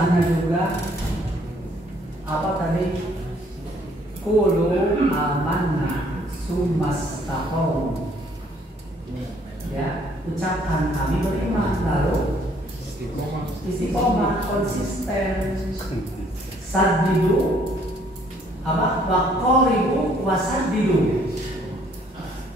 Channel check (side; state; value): both; normal; correlation 0.63